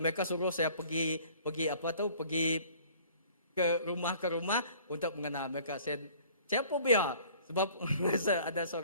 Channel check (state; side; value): inverted; both; correlation -0.52